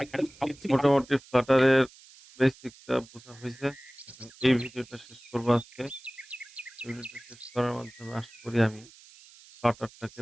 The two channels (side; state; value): right; noise; hiss, 23 dB below the sound